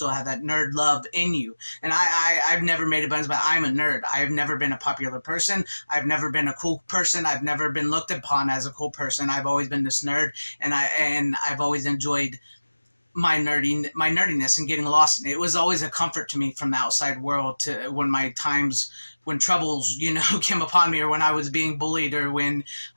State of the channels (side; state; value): both; inverted; correlation -1.00